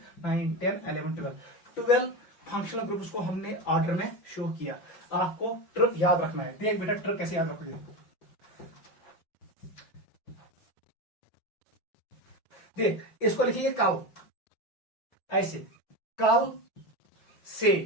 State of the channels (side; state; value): right; late; 5.9 ms